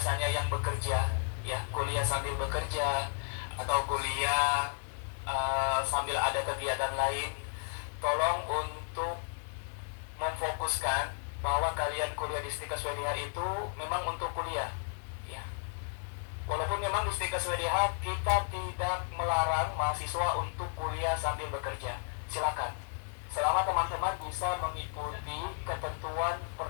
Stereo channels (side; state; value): right; silent; digital silence